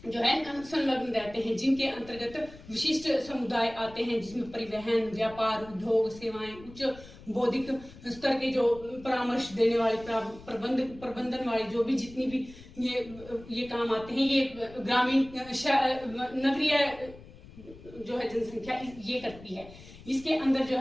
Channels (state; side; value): noise; left; rumble, 19 dB below the sound